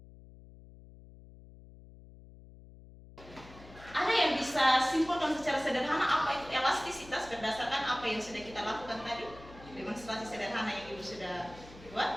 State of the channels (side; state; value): left; noise; hum, 19 dB below the sound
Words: Ada yang bisa simpulkan secara sederhana apa itu elastisitas berdasarkan apa yang sudah kita lakukan tadi? Demonstrasi sederhana yang Ibu sudah